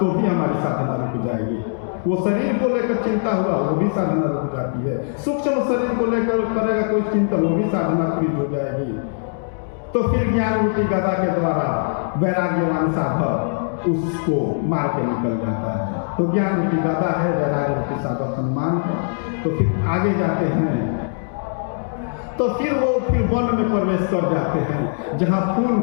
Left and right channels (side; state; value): right; silent; digital silence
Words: भी हमारी साधना रुक जाएगी। वो शरीर को लेकर चिंता हुआ वो भी साधना रुक जाती है। सूक्ष्म शरीर को लेकर करेगा कोई चिंतन, वो भी साधना फ्रीज हो जाएगी। तो फिर ज्ञान रूपी गदा के द्वारा वैराग्यवान साधक उसको मार के निकल जाता है। तो ज्ञान रूपी गदा है, वैराग्य रूपी साधक हनुमान है। तो फिर आगे जाते हैं, तो फिर वो वन में प्रवेश कर जाते हैं जहाँ फूल